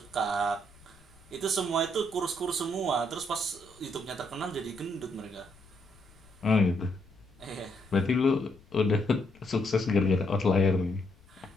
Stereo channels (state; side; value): noise; left; rumble, 26 dB below the sound